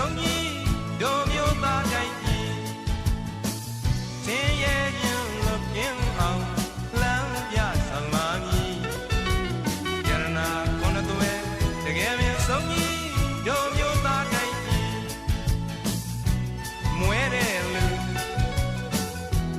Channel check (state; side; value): identical; both; correlation 1.00